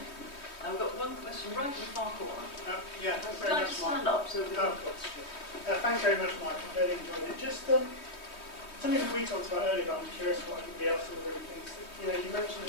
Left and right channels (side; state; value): right; late; 3.2 ms